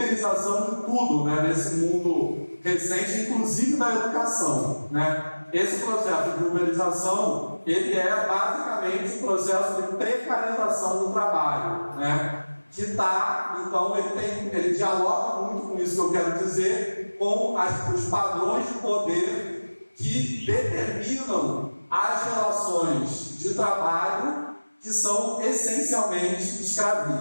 de tudo, né, nesse mundo recente, inclusive da educação, né? Esse processo de uberização, ele é basicamente um processo de precarização do trabalho, né? Que está, então, ele dialoga muito com isso que eu quero dizer, com os padrões de poder que determinam as relações de trabalho que são essencialmente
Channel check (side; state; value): both; inverted; correlation -1.00